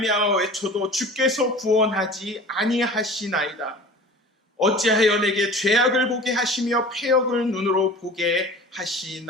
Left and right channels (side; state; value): both; normal; correlation 0.40